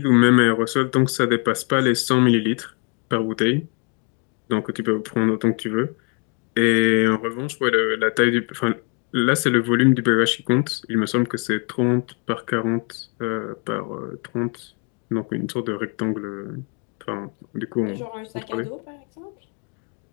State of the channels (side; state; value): right; quieter; 34.6 dB